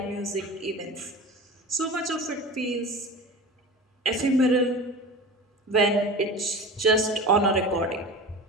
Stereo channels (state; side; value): normal; both; correlation 0.32